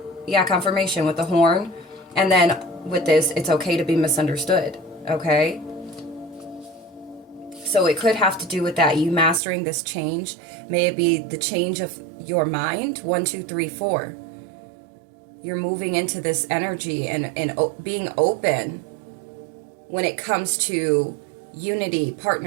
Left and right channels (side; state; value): left; drops out; at 9.4 s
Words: confirmation with the horn. And then with this, it's okay to be misunderstood, okay? So it could have to do with that, you mastering this change. May it be the change of your mind, 1, 2, 3, 4. You're moving into this energy and being open when it comes to unity,